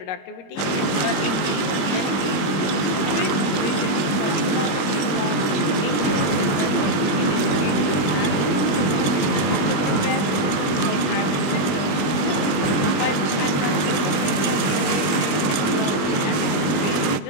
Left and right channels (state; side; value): late; right; 20 ms